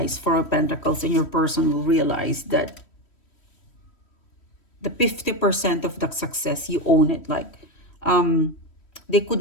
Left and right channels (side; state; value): right; late; 3.1 ms